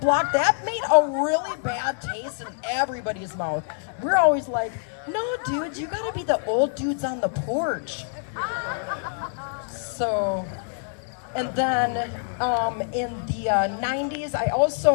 that made a really bad taste in everybody's mouth. We're always like, no, dude, you gotta be the old dudes on the porch. So, and then in the 90s, I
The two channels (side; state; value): right; silent; digital silence